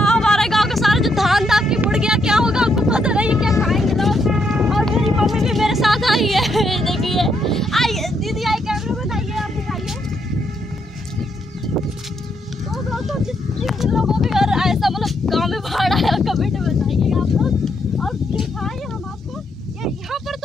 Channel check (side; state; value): both; normal; correlation 0.77